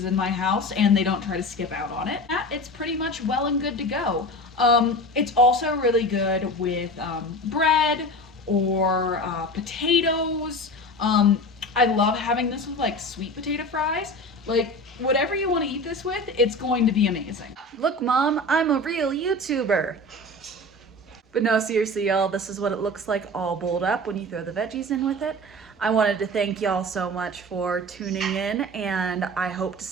in my house and they don't try to skip out on it. It's pretty much well and good to go. It's also really good with bread or potatoes. I love having this with like sweet potato fries. Like, whatever you want to eat this with, it's going to be amazing. Look, Mom, I'm a real YouTuber. But no, seriously, y'all, this is what it looks like all bowled up when you throw the veggies in with it. I wanted to thank y'all so much for tuning in, and I hope to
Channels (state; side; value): normal; both; correlation 0.32